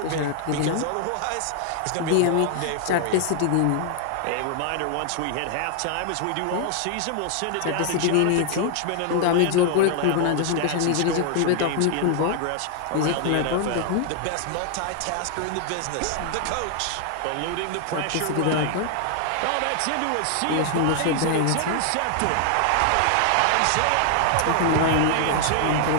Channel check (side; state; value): both; different; correlation 0.00